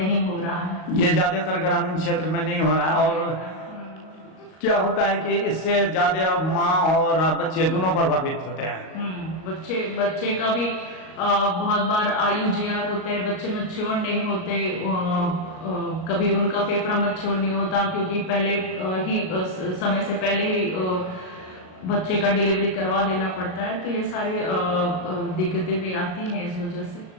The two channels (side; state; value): right; late; 38 ms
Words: हो रहा है। ये ज़्यादातर ग्रामीण क्षेत्र में नहीं हो रहा है। और क्या होता है कि इससे ज्यादा माँ और बच्चे दोनों प्रभावित होते हैं। बच्चे का भी बहुत बार आयु जीआर होते हैं, बच्चे मैच्योर नहीं होते, कभी उनका फेफड़ा मैच्योर नहीं होता क्योंकि पहले ही समय से पहले ही बच्चे का डिलीवरी करवा देना पड़ता है। तो ये सारी दिक्कतें भी आती हैं इस वजह से।